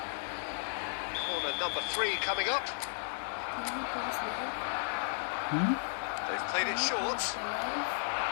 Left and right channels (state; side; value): silent; right; digital silence